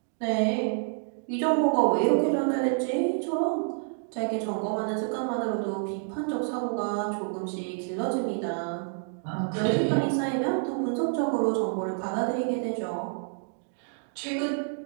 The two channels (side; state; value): left; silent; digital silence